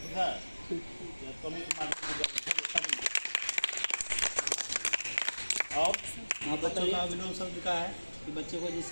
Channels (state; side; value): inverted; both; correlation -1.00